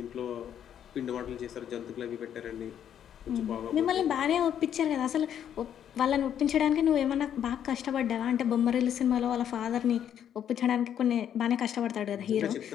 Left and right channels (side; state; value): right; quieter; 9.5 dB